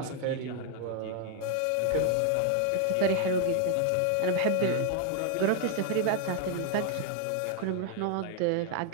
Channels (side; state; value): both; different; correlation 0.00